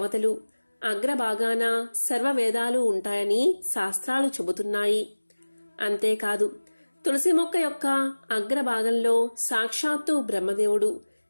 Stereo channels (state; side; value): inverted; both; correlation -1.00